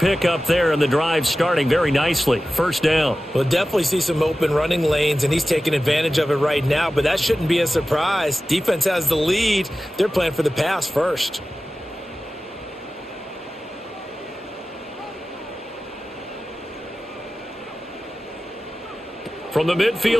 there, and the drive starting very nicely. 1st down. We'll definitely see some open running lanes, and he's taking advantage of it right now, but that shouldn't be a surprise. Defense has the lead. They're playing for the pass first. From the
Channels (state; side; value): normal; both; correlation 0.95